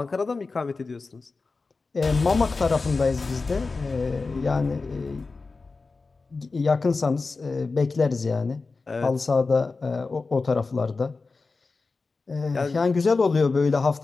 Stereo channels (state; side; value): quieter; right; 4.0 dB